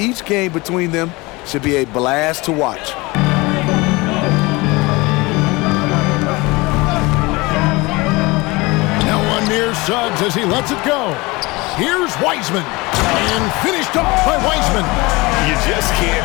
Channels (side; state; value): right; quieter; 23.4 dB